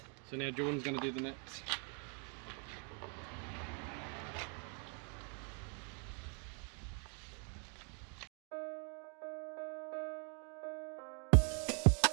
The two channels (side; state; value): left; quieter; 39.5 dB